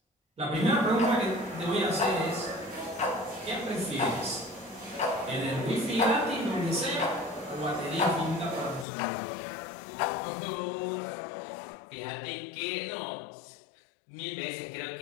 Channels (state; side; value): drops out; right; at 8.8 s